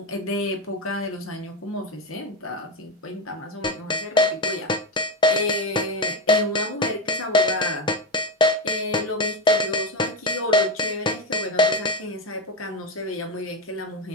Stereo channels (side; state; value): both; normal; correlation 0.14